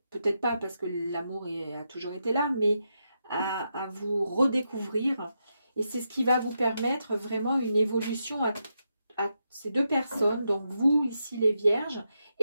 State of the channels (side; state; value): both; inverted; correlation -0.84